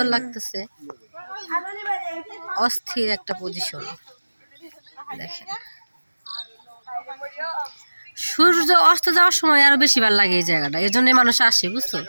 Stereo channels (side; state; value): both; inverted; correlation -1.00